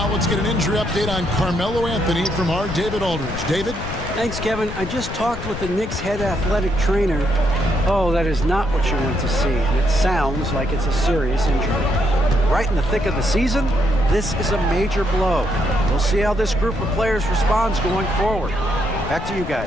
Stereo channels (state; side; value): noise; left; rumble, 8 dB below the sound